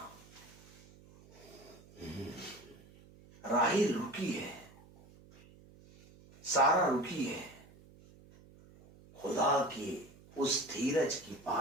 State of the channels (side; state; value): right; noise; hum, 23 dB below the sound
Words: राहिल रुकी है, सारा रुकी है, खुदा की उस धीरज की